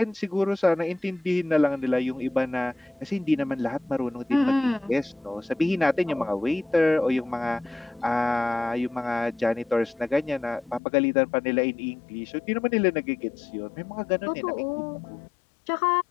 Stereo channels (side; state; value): right; drops out; at 10.8 s